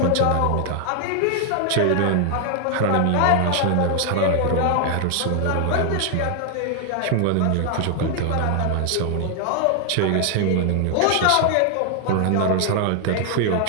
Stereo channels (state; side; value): different; both; correlation 0.00